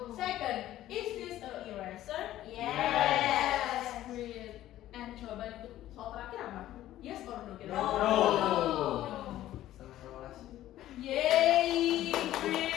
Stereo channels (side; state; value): right; quieter; 13.7 dB